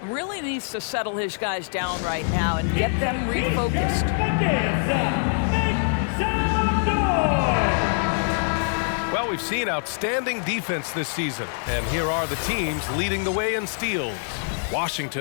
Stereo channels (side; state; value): right; silent; 62 dB below the other